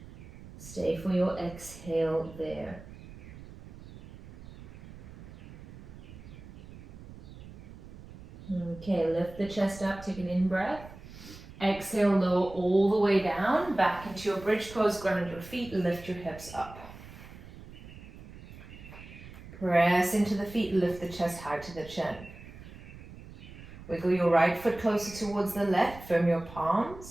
Stay for your exhale there. Okay, lift the chest up, take an in-breath. Exhale, lower all the way down, back into your bridge pose, ground your feet, lift your hips up. Press into the feet, lift the chest high to the chin. Wiggle your right foot closer towards the left, firm your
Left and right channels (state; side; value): noise; right; rumble, 16 dB below the sound